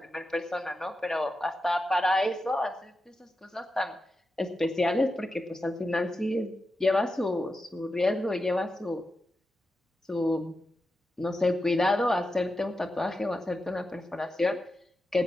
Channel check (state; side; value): normal; both; correlation 0.90